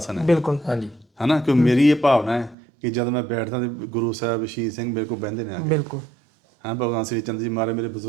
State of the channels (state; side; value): drops out; left; at 2.6 s